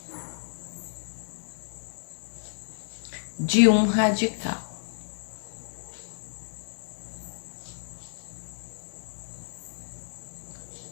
de um radical.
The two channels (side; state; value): right; silent; 57 dB below the other